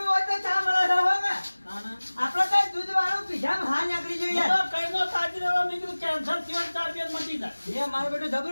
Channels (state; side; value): inverted; both; correlation -1.00